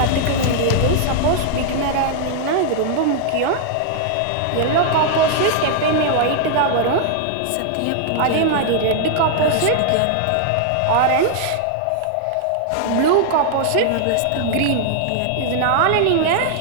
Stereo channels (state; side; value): different; both; correlation -0.01